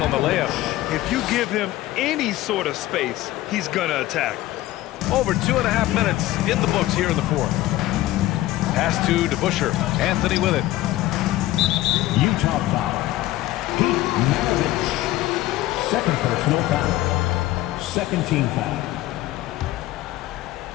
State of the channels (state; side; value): quieter; right; 16.1 dB